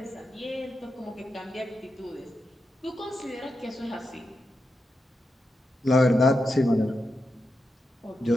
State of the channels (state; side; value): normal; both; correlation 0.87